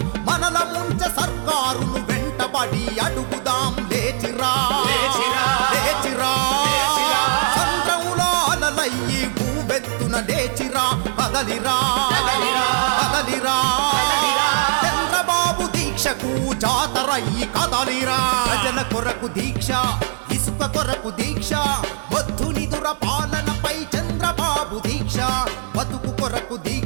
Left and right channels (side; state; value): left; silent; digital silence